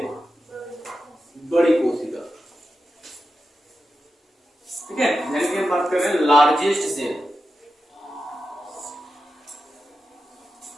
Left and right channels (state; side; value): normal; both; correlation 0.90